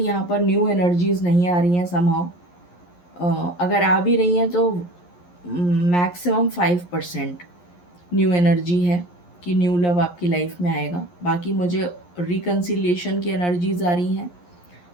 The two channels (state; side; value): late; right; 11 ms